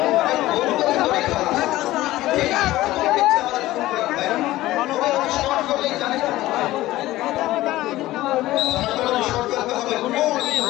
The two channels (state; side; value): quieter; right; 16.5 dB